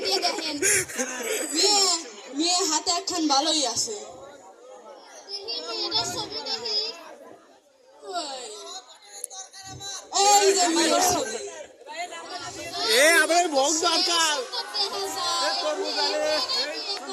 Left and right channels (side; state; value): both; identical; correlation 1.00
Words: দিয়ে দেখেন। মেয়ে মেয়ে হাতে একখান ভালোই আছে। এই যে মেয়ের ছবি। এ আমার ভোগ দরকার